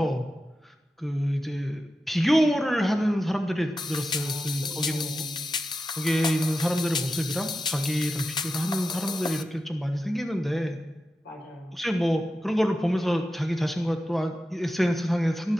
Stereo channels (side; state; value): both; normal; correlation 0.91